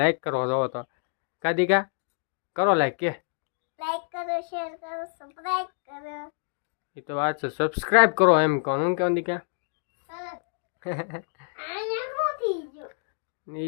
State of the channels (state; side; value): silent; right; 60 dB below the other